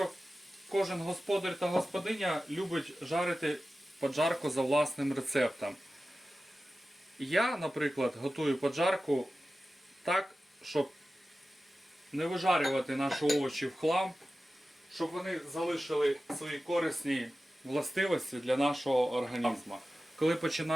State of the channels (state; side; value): normal; both; correlation 0.94